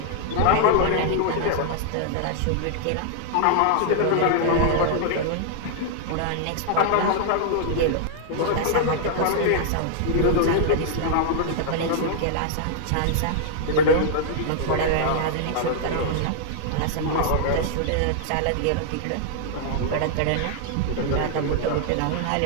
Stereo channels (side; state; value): both; different; correlation -0.01